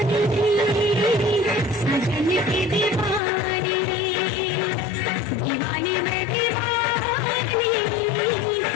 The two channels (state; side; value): drops out; right; at 3.2 s